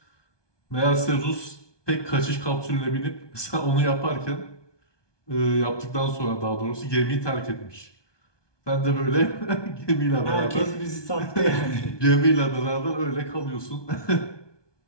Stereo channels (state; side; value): late; right; 1.2 ms